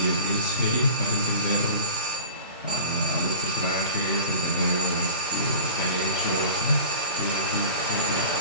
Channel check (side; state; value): both; inverted; correlation -0.38